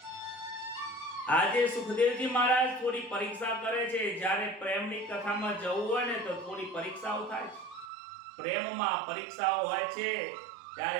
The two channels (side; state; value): left; drops out; at 7.9 s